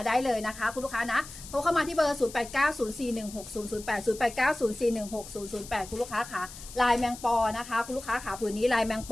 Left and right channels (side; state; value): left; noise; hiss, 15 dB below the sound